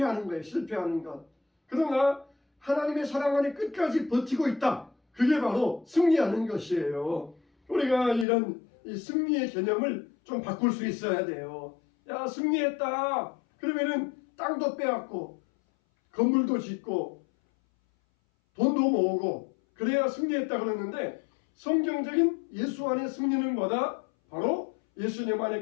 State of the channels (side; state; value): right; drops out; at 8.2 s